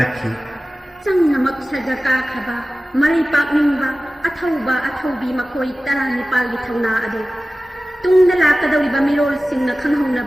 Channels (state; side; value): normal; both; correlation 0.96